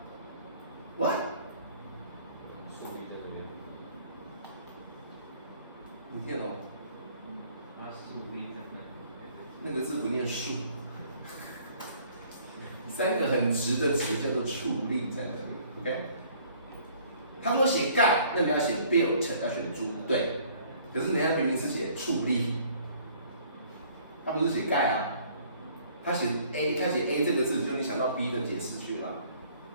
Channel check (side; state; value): both; inverted; correlation -0.58